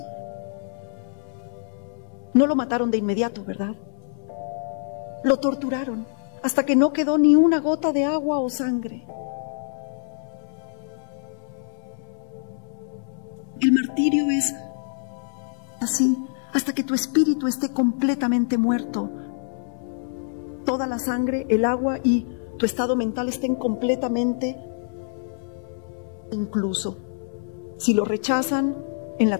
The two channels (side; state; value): right; silent; digital silence